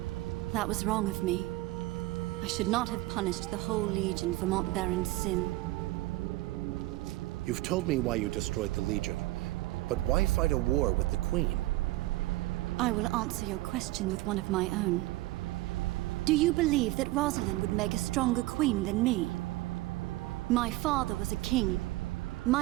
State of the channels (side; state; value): left; quieter; 18.8 dB